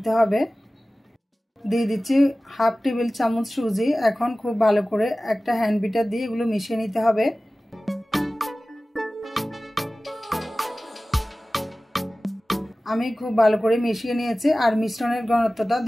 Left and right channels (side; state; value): both; normal; correlation 0.97